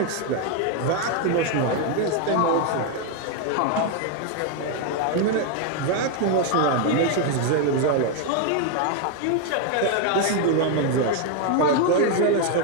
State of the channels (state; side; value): different; both; correlation 0.01